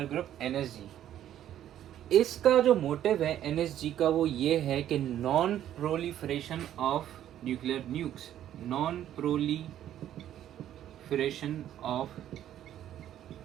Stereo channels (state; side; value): quieter; left; 11.4 dB